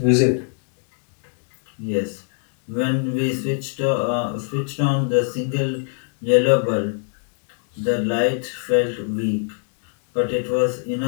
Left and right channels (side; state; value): right; silent; 58 dB below the other